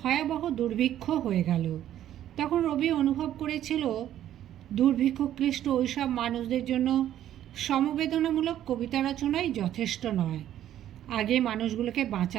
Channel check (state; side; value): quieter; left; 11.7 dB